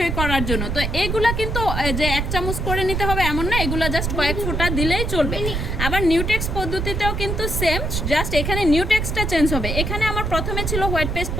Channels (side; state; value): right; noise; rumble, 2 dB below the sound